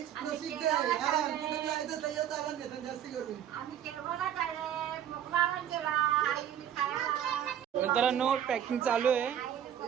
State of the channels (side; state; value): left; quieter; 10.0 dB